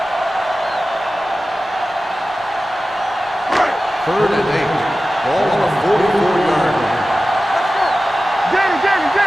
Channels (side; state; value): both; normal; correlation 0.95